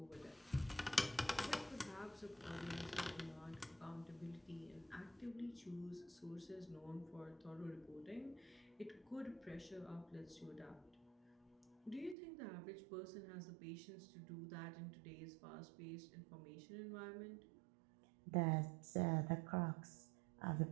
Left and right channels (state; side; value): drops out; left; at 12.2 s